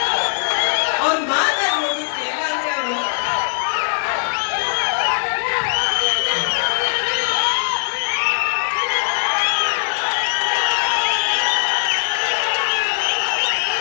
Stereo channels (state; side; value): silent; right; digital silence